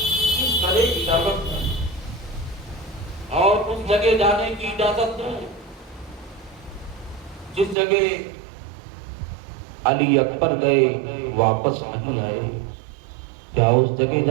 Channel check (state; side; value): drops out; left; at 7.8 s